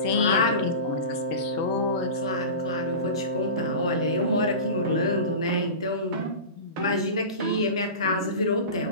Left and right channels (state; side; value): inverted; both; correlation -0.30